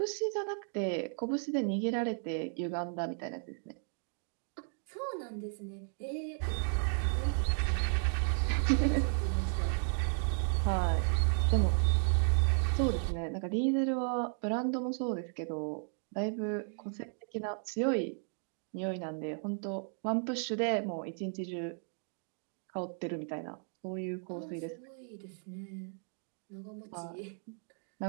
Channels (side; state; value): left; silent; 55 dB below the other